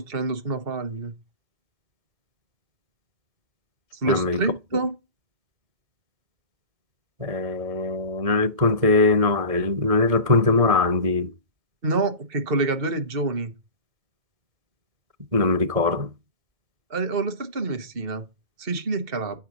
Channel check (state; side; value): late; left; 2.1 ms